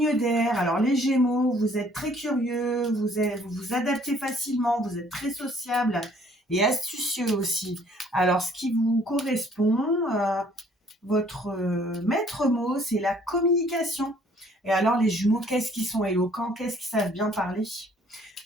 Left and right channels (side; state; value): both; normal; correlation 0.60